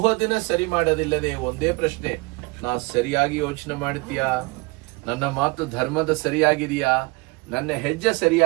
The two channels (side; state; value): left; quieter; 26.1 dB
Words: ಸರಿ ಮಾಡೋದಿಲ್ಲದೆ ಒಂದೇ ಪ್ರಶ್ನೆ, ನಾ ಸರಿಯಾಗಿ ಯೋಚನೆ ಮಾಡ್ತೀಯಾ, ನನ್ನ ಮಾತು ಧರ್ಮದ ಸರಿಯಾಗಿದೆಯಾ, ನನ್ನ ಹೆಜ್ಜೆ